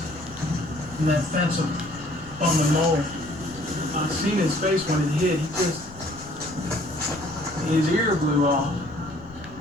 from that fence on the mower. I seen his face when it hit. His ear blew off,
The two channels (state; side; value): noise; left; rumble, 19 dB below the sound